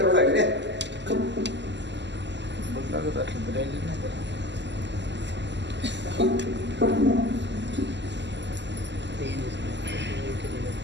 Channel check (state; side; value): late; left; 0.51 ms